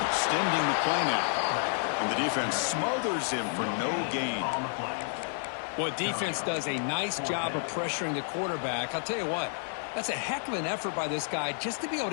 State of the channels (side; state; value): right; silent; 56 dB below the other